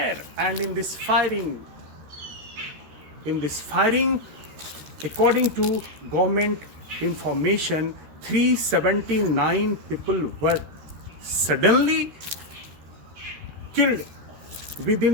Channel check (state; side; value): late; left; 13 ms